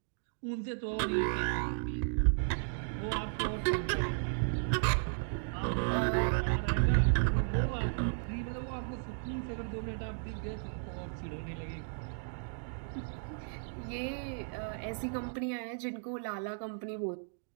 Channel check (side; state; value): left; silent; digital silence